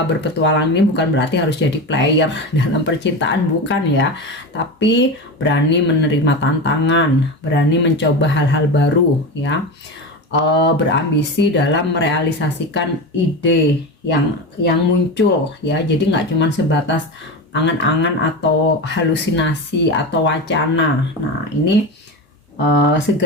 berpetualang ini bukan berarti harus jadi player dalam percintaan, bukan ya. Tapi berani menerima tantangan, berani mencoba hal-hal baru ya. Berambisi dalam merealisasikan ide yang muncul ya, jadi nggak cuma sebatas angan-angan atau halusinasi atau wacana. Nah ini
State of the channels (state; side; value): normal; both; correlation 0.23